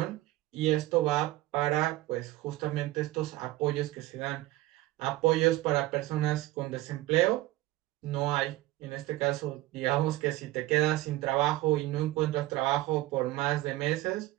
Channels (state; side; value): quieter; left; 17.4 dB